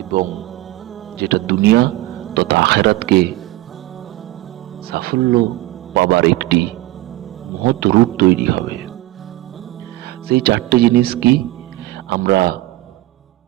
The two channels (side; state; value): left; quieter; 17.6 dB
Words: এবং যেটা দুনিয়া তথা আখিরাতকে সাফল্য পাবার একটি মহৎ রূট তৈরি হবে। সেই চারটে জিনিস কি আমরা